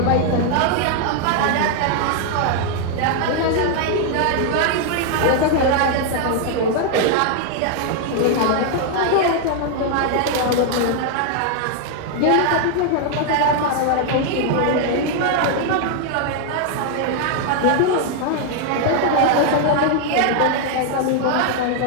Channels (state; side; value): different; both; correlation 0.00